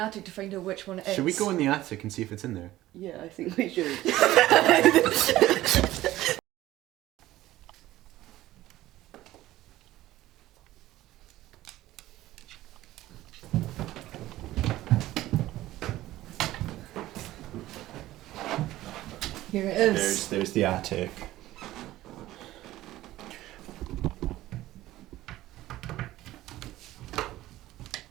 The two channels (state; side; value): quieter; left; 15.6 dB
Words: to find out which one it is. Should we go in the attic and see if it's in there? Yeah, I think we should. Here it is. There's the attic.